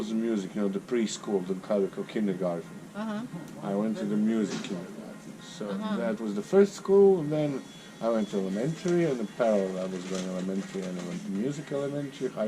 music, the preschool, the Calico kindergarten. I went to the music kindergarten. So that was the first school, and then I went to elementary, and in parallel I was going elementary, and I went to music elementary,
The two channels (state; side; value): identical; both; correlation 1.00